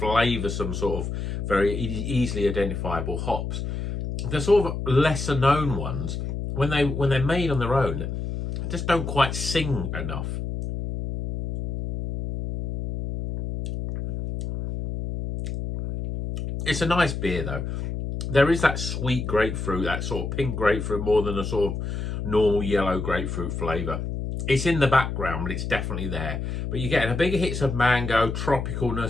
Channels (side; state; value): left; noise; hum, 4 dB below the sound